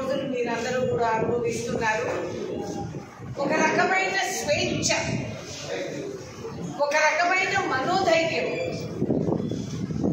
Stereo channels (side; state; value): both; identical; correlation 1.00